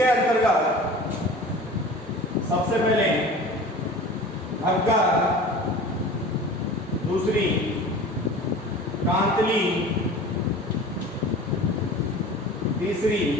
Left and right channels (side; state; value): both; normal; correlation 0.39